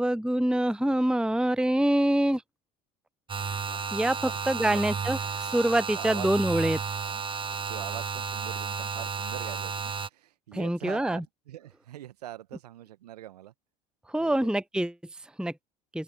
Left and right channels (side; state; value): both; normal; correlation 0.86